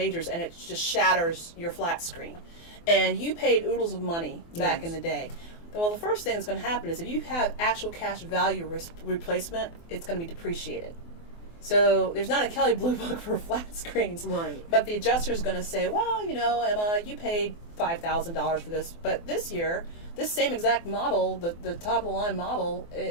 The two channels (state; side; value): late; right; 24 ms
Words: and it just shatters your flat screen. And you paid oodles of money back in the day. Well, the first thing that's going to happen is if you have actual cash value replacement, it's going to be depreciated. So there's not a Kelley Blue Book for flat screens. Right. But the adjuster is going to say, well, Emma, you paid $5,000 for this, but this year, this same exact model, the top of the line model,